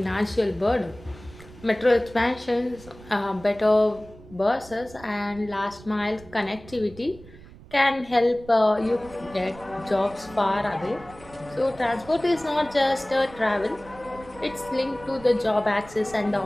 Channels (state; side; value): noise; right; rumble, 20 dB below the sound